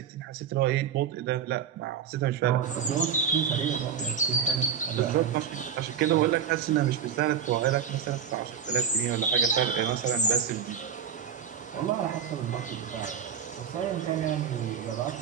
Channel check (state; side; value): quieter; left; 7.7 dB